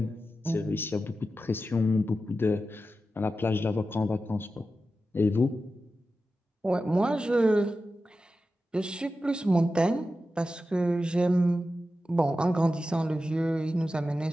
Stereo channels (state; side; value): normal; both; correlation 0.92